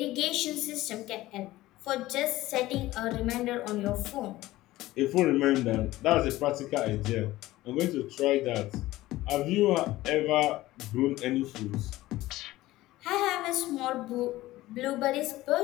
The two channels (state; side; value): quieter; right; 17.0 dB